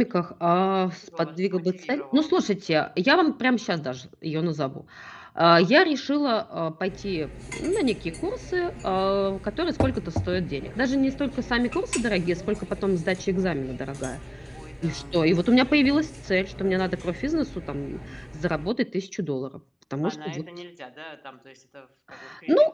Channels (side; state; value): both; identical; correlation 1.00